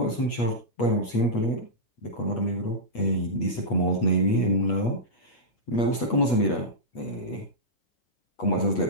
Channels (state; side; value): late; right; 8.3 ms